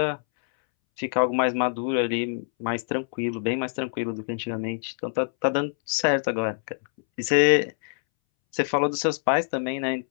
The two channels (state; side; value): silent; right; 62 dB below the other